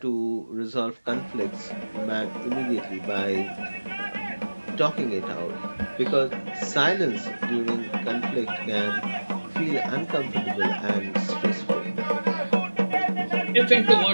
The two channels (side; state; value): both; inverted; correlation -1.00